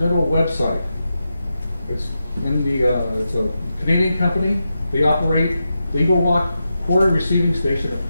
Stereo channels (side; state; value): both; inverted; correlation -0.88